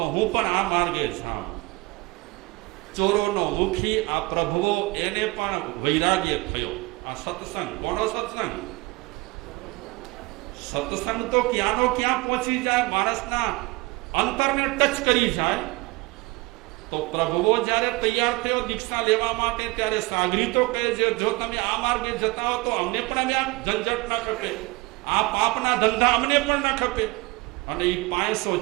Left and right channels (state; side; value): quieter; left; 23.8 dB